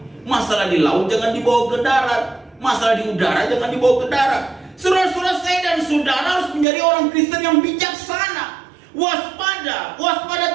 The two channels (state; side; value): drops out; left; at 6.7 s